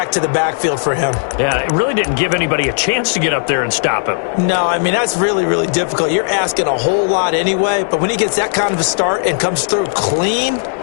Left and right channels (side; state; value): right; silent; digital silence